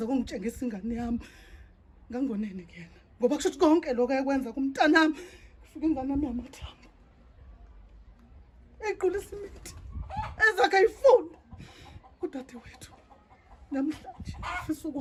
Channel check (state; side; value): identical; both; correlation 1.00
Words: kungitshengisa ingane yami. Ngangonene kuyena ngoba kusho ukuthi konke lokho ayekwenza kumntanami ufike ingane yami yamathambo equlisa imithi ezakhe ayifunda kudade wethu namhlanje ufisa